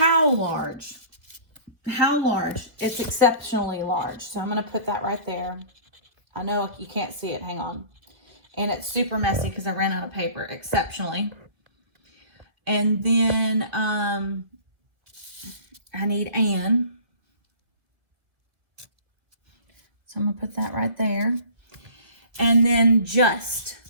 large? How large? It's exceptionally large. So I'm going to put that right there. I know you can't see it. Hang on. And it's super messy because I ran out of paper. Exceptionally. And then I need an. So I'm going to put that right there. And then just.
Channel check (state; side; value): late; left; 2.1 ms